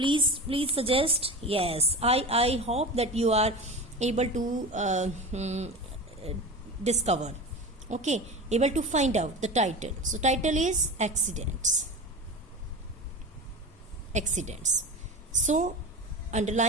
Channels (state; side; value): normal; both; correlation 0.29